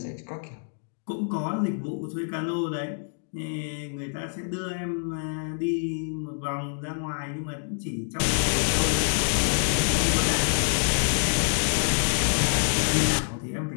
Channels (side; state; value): right; silent; 61 dB below the other